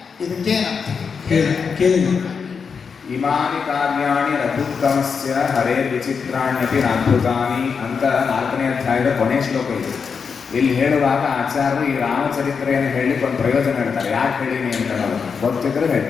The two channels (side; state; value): right; quieter; 5.9 dB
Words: ಇದಕ್ಕೇನಂತ ಕೇಳಿ. ಇಮಾನಿ ಕಾರ್ಯಾಣಿ ರಘುತ್ತಮಸ್ಯ ಹರೇ ವಿಚಿತ್ರಾಣ್ಯಪಿ ಅದ್ಭುತಾನಿ ಅಂತ 4ನೇ ಅಧ್ಯಾಯದ ಕೊನೆ ಶ್ಲೋಕ ಇದೆ. ಇಲ್ಲಿ ಹೇಳುವಾಗ ಆಚಾರ್ಯರು ಈ ರಾಮಚರಿತ್ರೆಯನ್ನು ಹೇಳಲಿಕ್ಕೆ ಒಂದು ಪ್ರಯೋಜನ ಹೇಳ್ತಾರೆ. ಯಾಕೆ ಹೇಳಿನಿ ಅಂತ ಹೇಳೋದು ಗೊತ್ತಿದ್ರೆ ಹೇಳಿ.